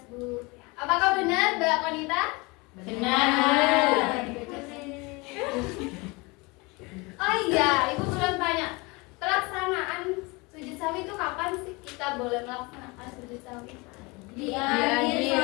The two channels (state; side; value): quieter; right; 26.1 dB